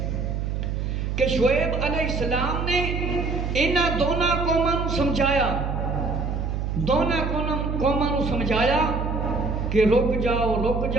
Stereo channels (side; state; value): right; noise; hum, 2 dB below the sound